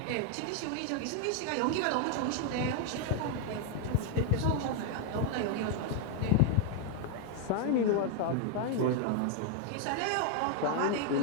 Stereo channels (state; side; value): different; both; correlation 0.01